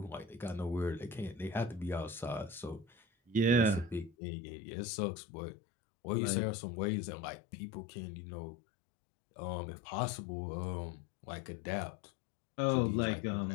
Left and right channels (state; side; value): drops out; right; at 4.2 s